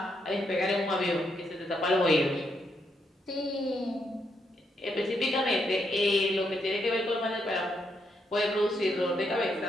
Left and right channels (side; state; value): both; normal; correlation 0.79